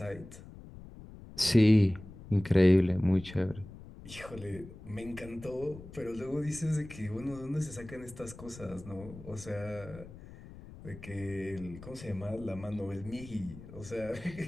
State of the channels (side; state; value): left; noise; rumble, 16 dB below the sound